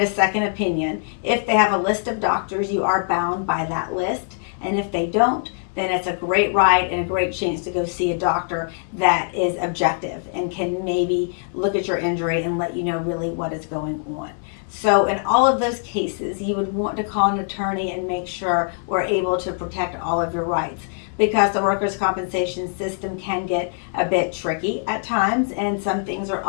a second opinion. If they have a list of doctors, you are bound by that list. And if they don't, then it's a great right and a great chance to go see a doctor that is objective and can maybe look at your injury and let you know really what is going on. So in all of those cases, you would want to call an attorney and make sure we're able to protect all of your rights, because the workers' compensation system can get a bit tricky at times, and some things are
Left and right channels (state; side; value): silent; right; digital silence